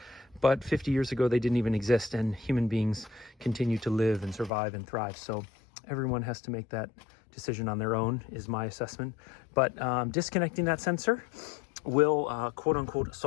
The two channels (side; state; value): right; drops out; at 4.5 s